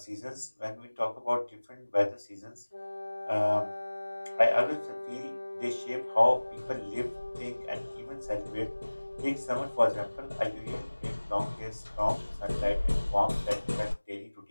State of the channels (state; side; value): inverted; both; correlation -1.00